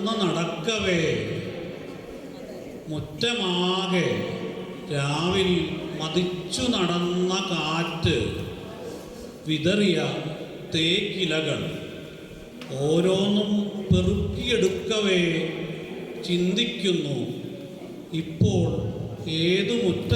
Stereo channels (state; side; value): identical; both; correlation 1.00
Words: നടക്കവേ മുറ്റമാകെ രാവിൽ മതിച്ചു നടന്ന കാറ്റ് വിതറിയ തേക്കിലകൾ ഓരോന്നും പെറുക്കിയെടുക്കവേ ചിന്തിക്കുന്നു, ഇപ്പോൾ ഏതു